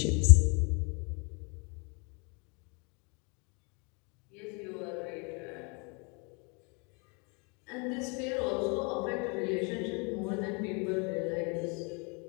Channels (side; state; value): right; quieter; 33.1 dB